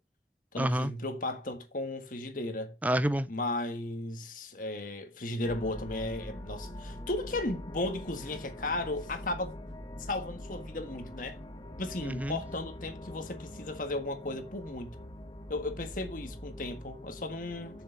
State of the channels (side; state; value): both; normal; correlation 0.39